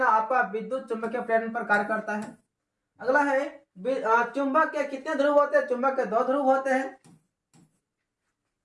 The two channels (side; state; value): both; identical; correlation 1.00